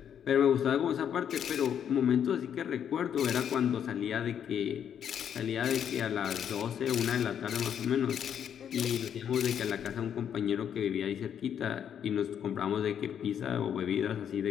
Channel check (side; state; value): right; quieter; 8.8 dB